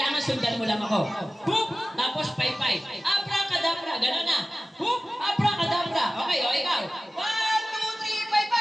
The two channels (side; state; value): both; normal; correlation 0.96